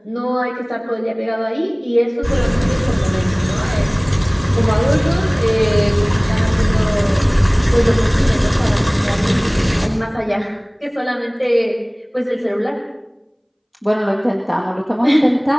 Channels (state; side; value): identical; both; correlation 1.00